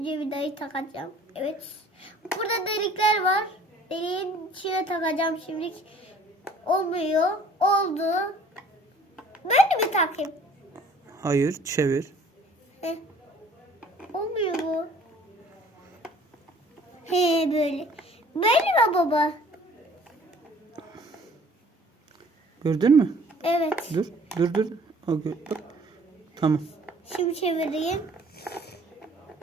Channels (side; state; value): both; normal; correlation 0.53